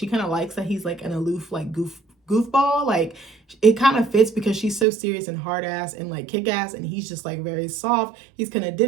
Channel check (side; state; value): left; drops out; at 4.9 s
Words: kind of likes that he's like an aloof, like goofball. Like, it kind of fits because she's so serious and hard ass and like kick ass, and he's just like very soft. He's kind of